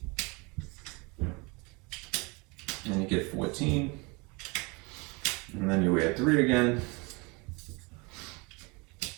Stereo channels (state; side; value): quieter; left; 28.2 dB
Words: And you get 14. And then you add 3 again.